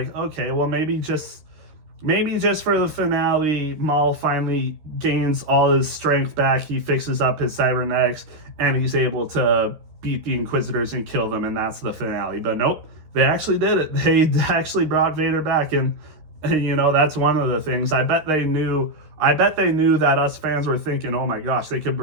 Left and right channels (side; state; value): left; late; 13 ms